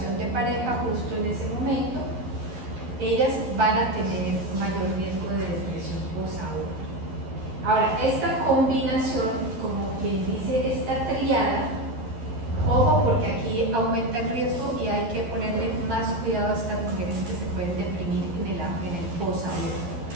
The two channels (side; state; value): left; late; 12 ms